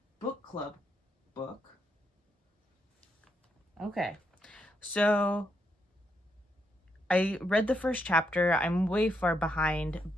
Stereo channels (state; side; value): normal; both; correlation 0.79